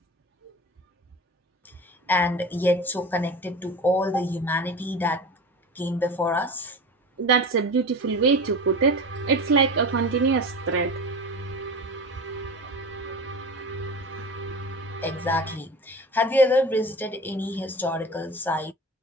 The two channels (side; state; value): both; normal; correlation 0.31